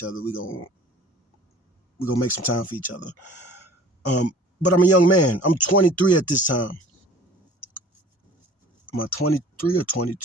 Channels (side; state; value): both; normal; correlation 0.47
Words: other, we gonna make some time for each other. But I'm a young man. I'm 23 at this time. Am I 23 or